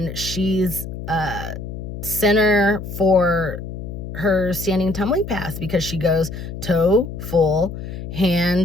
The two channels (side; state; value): left; noise; hum, 8 dB below the sound